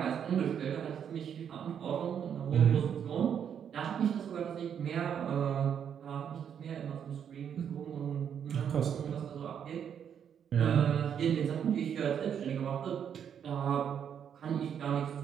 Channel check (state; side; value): quieter; left; 8.3 dB